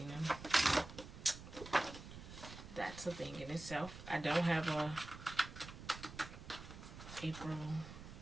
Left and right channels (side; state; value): right; noise; rumble, 13 dB below the sound